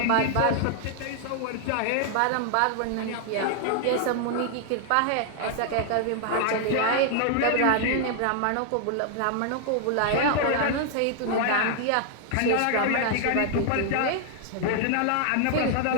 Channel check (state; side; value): different; both; correlation 0.00